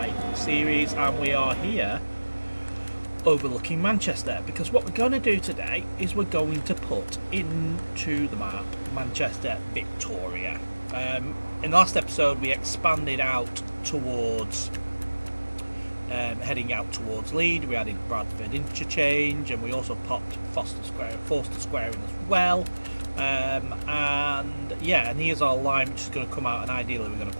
series, and we are here overlooking Manchester because what we're going to do today is we're going to put into the map Manchester Victoria. In the last episode we expanded out towards heading out towards Leeds. We added Bradford interchange, and we also popped Forster Square in as well. And here's our line which is going to come out, and ideally we're going to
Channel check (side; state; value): both; inverted; correlation -1.00